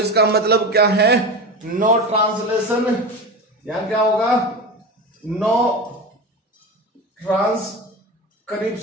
मतलब क्या है, नो ट्रांसलेशन, यहां क्या होगा, नो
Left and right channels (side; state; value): both; normal; correlation 0.26